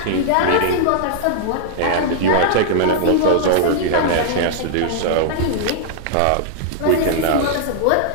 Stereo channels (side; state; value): both; different; correlation -0.01